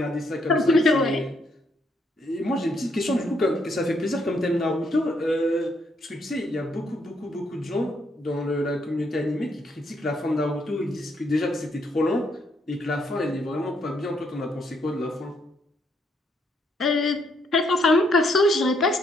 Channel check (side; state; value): both; normal; correlation 0.73